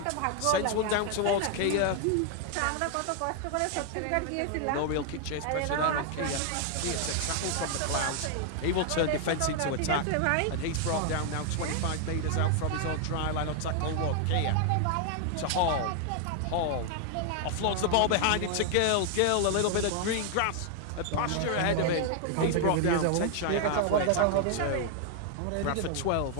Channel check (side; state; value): both; different; correlation 0.00